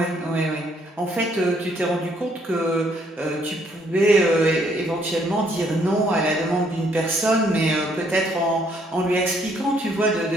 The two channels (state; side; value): normal; both; correlation 0.68